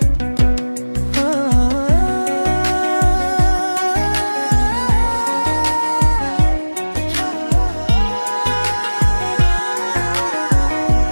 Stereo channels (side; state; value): both; inverted; correlation -1.00